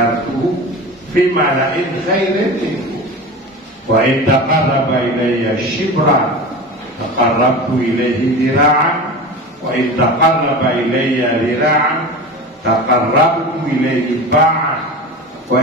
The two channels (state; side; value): normal; both; correlation 0.30